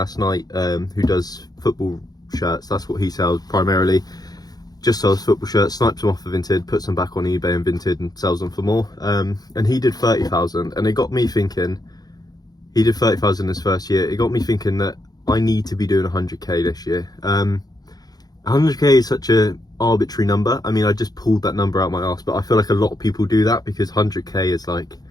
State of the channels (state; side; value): late; right; 0.19 ms